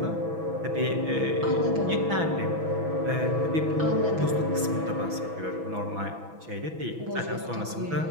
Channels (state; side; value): late; left; 6.1 ms